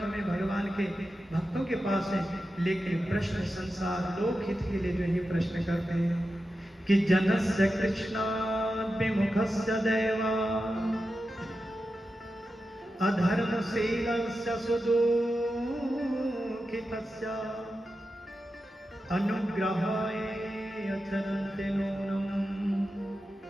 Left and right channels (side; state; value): both; normal; correlation 0.91